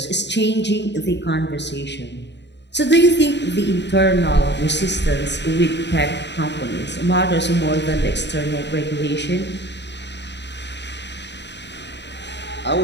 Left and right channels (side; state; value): right; late; 0.51 ms